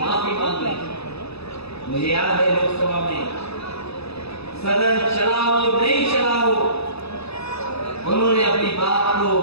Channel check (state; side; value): late; right; 0.79 ms